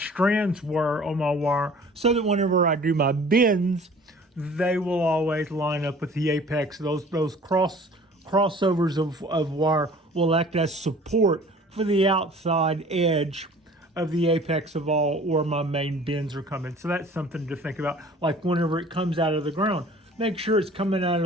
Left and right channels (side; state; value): both; normal; correlation 0.48